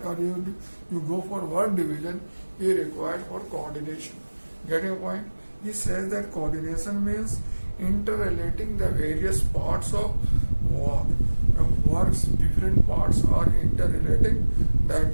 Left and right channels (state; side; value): inverted; both; correlation -1.00